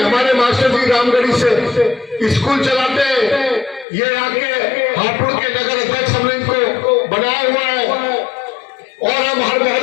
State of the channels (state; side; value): drops out; right; at 3.9 s